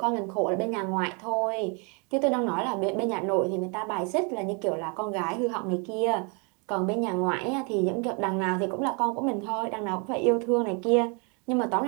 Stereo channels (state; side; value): quieter; left; 34.4 dB